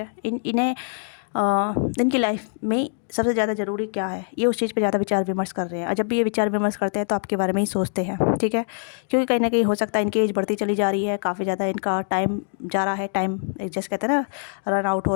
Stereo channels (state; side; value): silent; right; digital silence